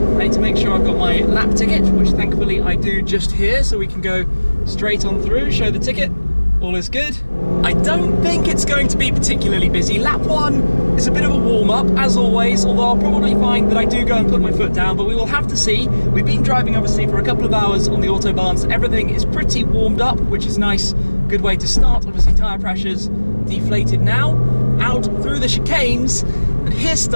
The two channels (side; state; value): both; inverted; correlation -1.00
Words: I need to make sure I've got my lap ticket, which thankfully I do just here, so we can go straight on through, show the ticket. All is good. I don't think it's going to be particularly busy. Lap 1 is a bit of a warm-up, as always, although I'll probably find that I do go and put my foot down, but we will have to see. We've been driving, obviously, for a couple of hours on the Autobahn, so everything is pretty warmed up, which is nice. Good way to start. Obviously, tyre pressures deflated now. Out through the chicanes, and here